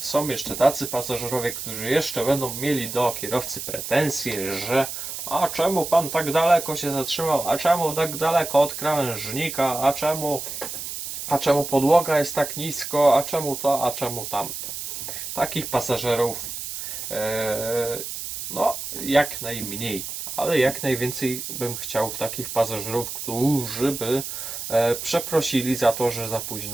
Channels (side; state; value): right; noise; hiss, 7 dB below the sound